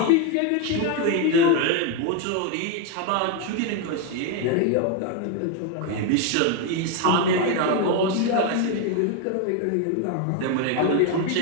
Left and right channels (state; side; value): different; both; correlation 0.02